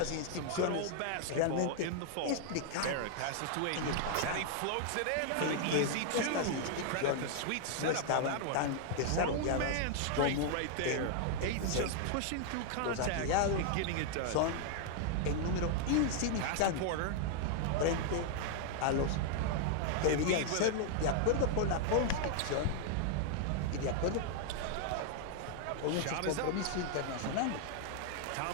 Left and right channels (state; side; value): different; both; correlation 0.00